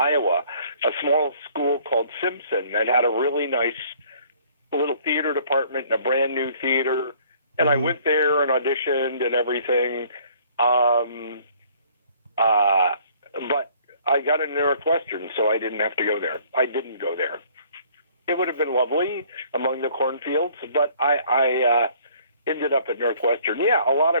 a small school called Simpson that had a really nice little theater department and a brand new theater. And I went there and auditioned and everything. But I got into Northwestern, so I didn't have to go there. I didn't go there. It would have been lovely among the cornfields, but I ended up at Northwestern. Yeah, a lot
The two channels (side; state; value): both; inverted; correlation -0.58